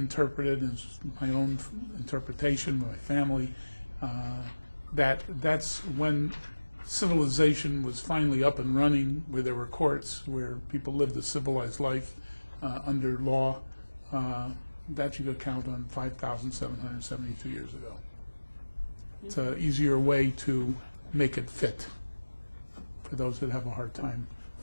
and my own interpretation with my family, that's when civilization was finally up and running, where there were courts, where people lived a civilized life under law. That you could count on 5,772 years ago. It's an easier way to make it fit for those that have a hard time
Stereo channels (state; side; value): inverted; both; correlation -1.00